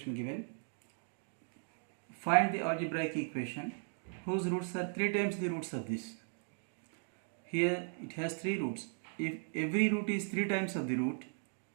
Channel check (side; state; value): left; silent; 53 dB below the other